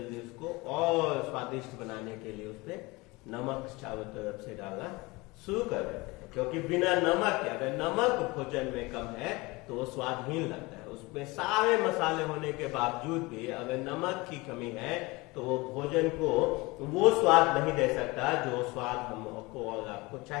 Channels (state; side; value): quieter; right; 23.6 dB